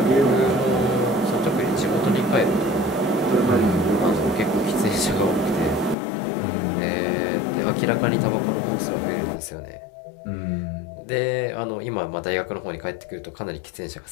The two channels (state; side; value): drops out; right; at 6.0 s